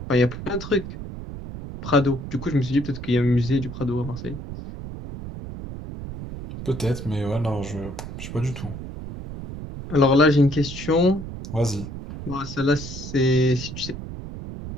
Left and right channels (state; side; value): noise; right; rumble, 9 dB below the sound